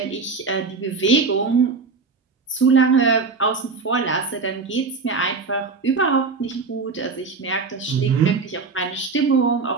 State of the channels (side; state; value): left; quieter; 4.5 dB